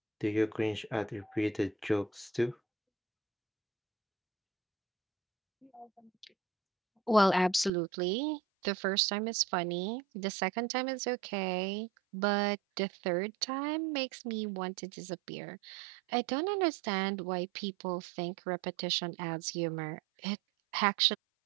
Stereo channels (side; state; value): left; drops out; at 7.7 s